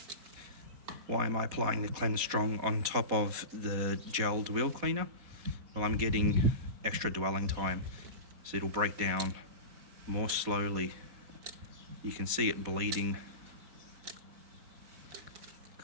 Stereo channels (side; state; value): left; late; 4.2 ms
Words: Why am I applying the Cleanse Strong on top of the gelled wheel cleaner? Well, I'm getting extra dwelling time, so it'll break down more slowly. You can see it bleeding.